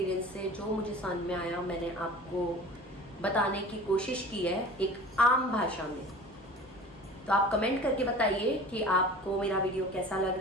से जो मुझे समझ में आया मैंने आपको बताने की कोशिश की है एक आम भाषा में। तो आप कमेंट करके बताइए कि आपको मेरा वीडियो कैसा लग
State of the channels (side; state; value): both; normal; correlation 0.41